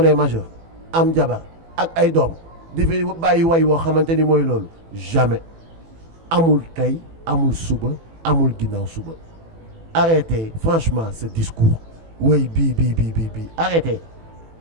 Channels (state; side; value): late; left; 18 ms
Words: est majeur am jabar ak ay doom di fi bàyyi way woo xamante ni mooy loolu jamais amul tey amul suba amul ginnaaw suba arrêtez franchement ce discours woy bii arrêtez